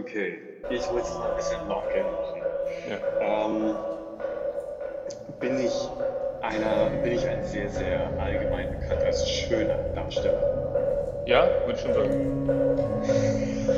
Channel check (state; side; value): identical; both; correlation 1.00